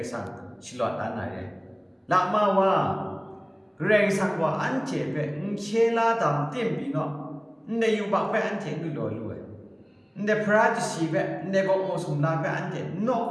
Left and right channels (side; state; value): both; identical; correlation 1.00